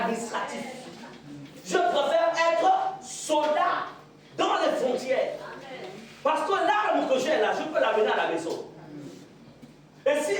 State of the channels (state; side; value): identical; both; correlation 1.00